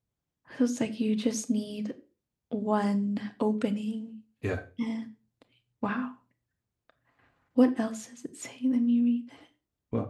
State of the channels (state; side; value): identical; both; correlation 1.00